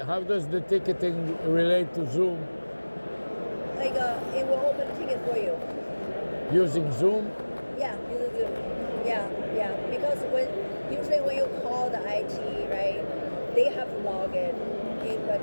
how does the ticketing relate to Zoom? Like it will open a ticket for you. Using Zoom? Yeah, use Zoom. Yeah. Because usually when you call the IT, right, they have to log in the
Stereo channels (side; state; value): both; inverted; correlation -1.00